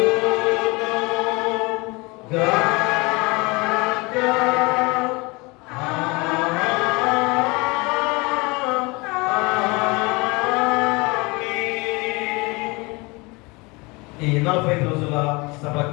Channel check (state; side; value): quieter; right; 25.9 dB